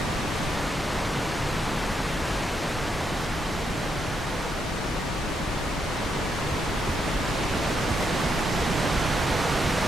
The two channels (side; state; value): both; normal; correlation 0.79